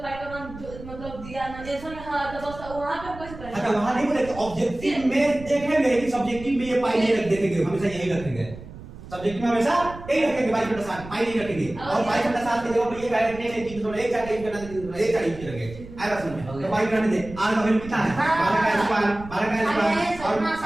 पाई का मान मतलब दिया ना जैसा में हां तो बस वहां पे कैसे करेंगे? अच्छा वहां नहीं बोले, ऑब्जेक्टिव में देखेंगे कि सब्जेक्टिव में ये पाई नहीं रख देखेंगे, हमेशा यही रखेंगे। सब्जेक्ट में हमेशा यही रखेंगे 22/7, पाई नहीं रखेंगे। और 22/7 के जगह पर ये डायरेक्ट नहीं है 3.1 4 टाइप करना, 1 4 टाइप करेंगे। आएगा समझ में? तो पाई करने दे। r का वैल्यू कितना है? 12 का स्क्वायर, 12 का स्क्वायर और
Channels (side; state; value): right; noise; rumble, 15 dB below the sound